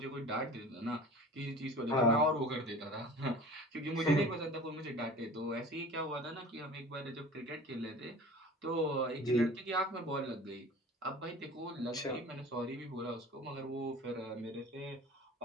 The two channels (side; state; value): both; normal; correlation 0.41